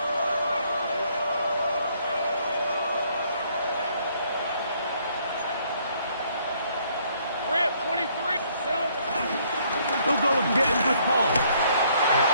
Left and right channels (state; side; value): inverted; both; correlation -0.66